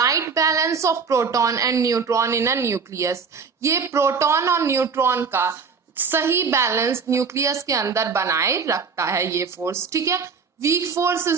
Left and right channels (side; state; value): left; quieter; 5.5 dB